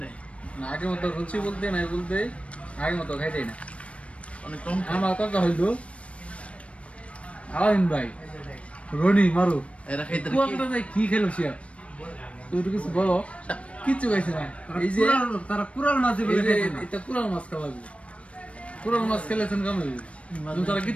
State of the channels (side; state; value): right; late; 0.062 ms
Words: নাই না। আগের মতো রুচি বলতে নাই, বলতে আগের মতো খাইতে না, অনেক কম। আমার কথা হইলো আলামিন ভাই, রনি মারু এরা খাইতে কি খেলো সে, তুই তো কিছু বলো। কিচ্ছু খাইছে না। এই যে তারা কুরাল মাছ এটা কুরাল মাছ খাওয়াবি, কুরাল মাছ খেলেছেন কেমন? তারা